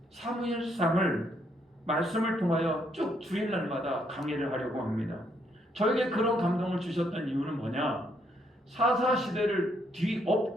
사무엘상을 말씀을 통하여 쭉 주일날마다 강의를 하려고 합니다. 저에게 그런 감동을 주셨던 이유는 뭐냐? 사사시대를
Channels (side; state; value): both; normal; correlation 0.72